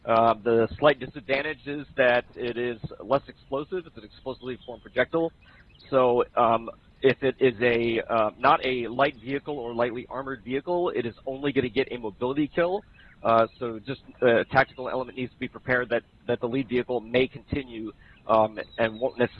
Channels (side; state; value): both; identical; correlation 1.00